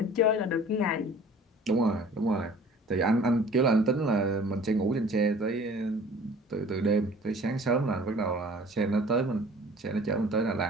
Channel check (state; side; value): normal; both; correlation 0.48